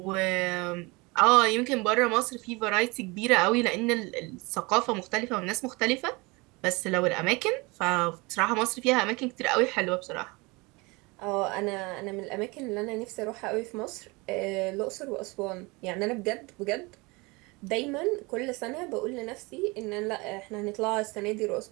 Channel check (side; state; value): left; quieter; 25.6 dB